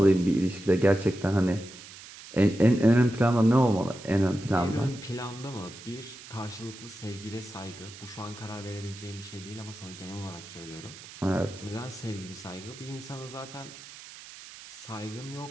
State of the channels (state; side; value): noise; right; hiss, 16 dB below the sound